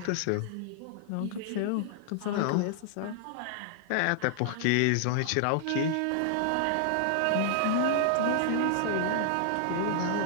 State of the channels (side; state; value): both; different; correlation -0.01